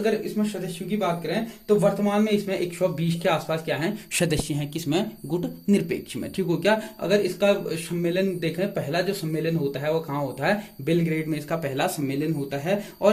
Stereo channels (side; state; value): both; identical; correlation 1.00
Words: इसमें सदस्यों की बात करें तो वर्तमान में इसमें 120 के आसपास क्या है? सदस्य हैं। किसमें? गुट निरपेक्ष में। ठीक हो गया। अगर इसका सम्मेलन देखें, पहला जो सम्मेलन होता है वो कहाँ होता है? बेलग्रेड में इसका पहला सम्मेलन होता है।